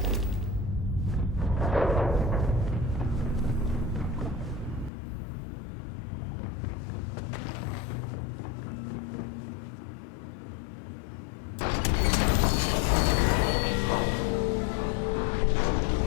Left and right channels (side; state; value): right; drops out; at 4.9 s